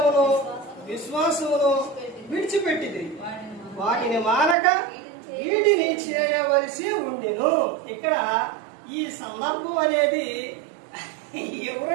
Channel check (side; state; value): left; drops out; at 4.5 s